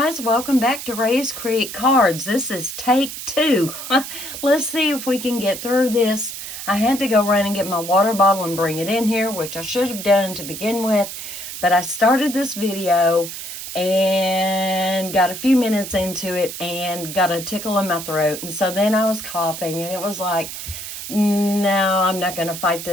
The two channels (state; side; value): noise; right; hiss, 9 dB below the sound